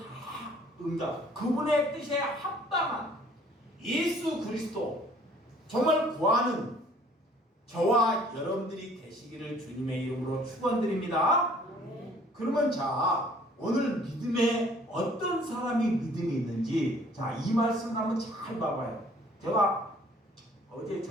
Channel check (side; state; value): both; normal; correlation 0.56